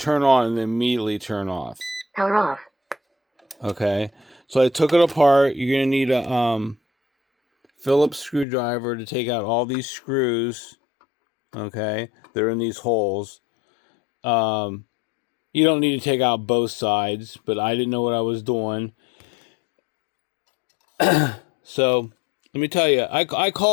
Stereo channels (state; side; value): drops out; right; at 8.5 s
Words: on and then immediately turn off. Power off. Okay, so I took it apart. You're going to need a Phillips screwdriver to take out all these screws. Okay, they're in these holes. You don't need to take out both sides, but I didn't know what I was doing. So let me tell you, I